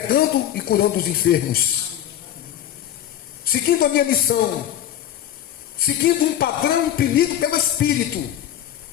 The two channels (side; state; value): right; quieter; 11.4 dB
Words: e curando os enfermos, seguindo a minha missão, seguindo um padrão imprimido pelo Espírito,